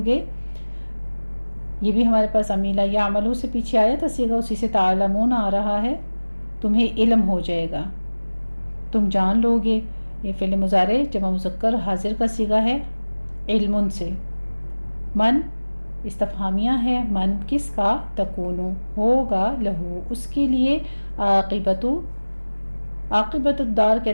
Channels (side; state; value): both; inverted; correlation -1.00